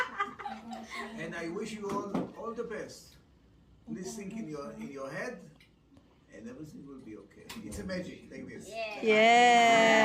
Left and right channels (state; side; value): identical; both; correlation 1.00